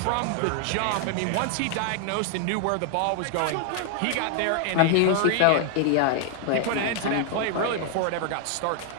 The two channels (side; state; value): both; different; correlation 0.00